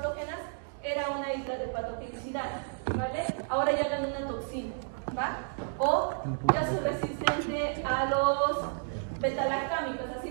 era una isla de patogenicidad, ¿vale? Ahora ya gané una toxina, ¿va? O ya soy resistente a los betalactámicos, así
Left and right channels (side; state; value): left; silent; digital silence